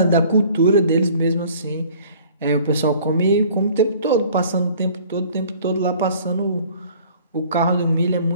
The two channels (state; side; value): inverted; both; correlation -0.52